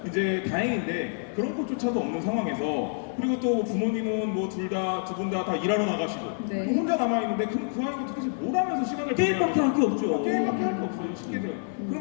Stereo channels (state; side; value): silent; right; digital silence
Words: 이제 다행인데 그런 것조차도 없는 상황에서 그리고 또 부모님은 뭐 두 분 다 일하러 나가시고 네. 그럼 혼자 남아 있는데 그 아이가 도대체 뭘 하면서 시간을 게임밖에 할 게 없죠. 게임밖에 할 게 없어요. 쉽게 들어요.